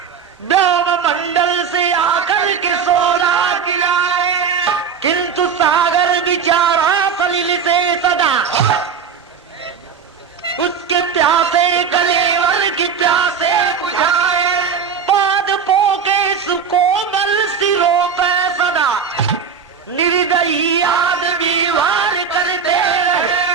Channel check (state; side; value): quieter; left; 6.5 dB